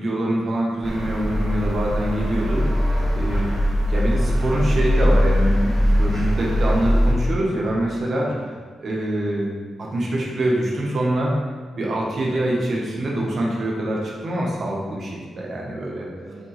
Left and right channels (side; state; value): both; normal; correlation 0.93